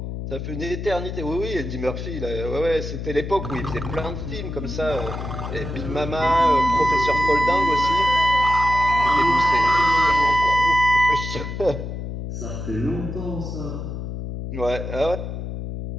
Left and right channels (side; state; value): left; noise; hum, 6 dB below the sound